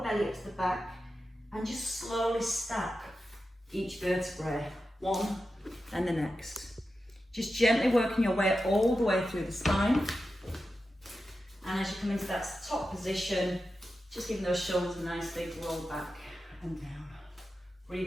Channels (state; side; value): normal; both; correlation 0.91